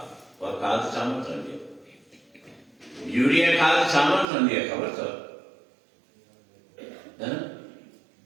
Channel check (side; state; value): left; drops out; at 4.2 s